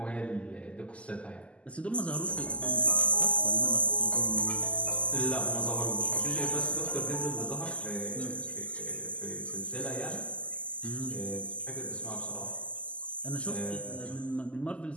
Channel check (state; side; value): late; right; 0.059 ms